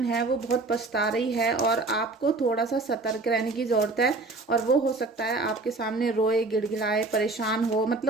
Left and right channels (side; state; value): left; quieter; 3.4 dB